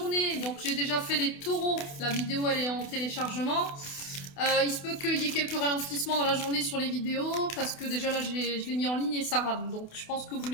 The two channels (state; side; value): late; right; 28 ms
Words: Donc j'ai déjà fait les taureaux, la vidéo elle est en téléchargement. Il se peut qu'il y ait quelques ralentissements dans la journée sur les vidéos, parce que déjà là je l'ai mis en ligne et ça rame. Donc je pense que vous